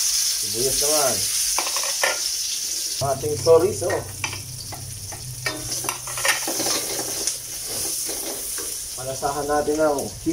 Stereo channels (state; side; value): identical; both; correlation 1.00